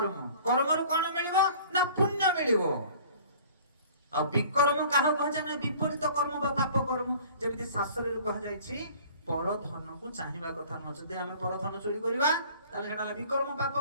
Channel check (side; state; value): both; inverted; correlation -0.49